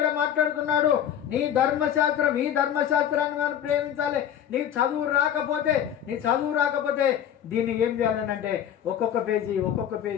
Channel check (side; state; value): right; quieter; 9.7 dB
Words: మాట్లాడుతున్నాడు, నీ ధర్మశాస్త్రం, ఈ ధర్మశాస్త్రాన్ని మనం ప్రేమించాలి. నీ చదువు రాకపోతే దీన్ని ఏం చేయాలనంటే ఒక్కొక్క పేజీ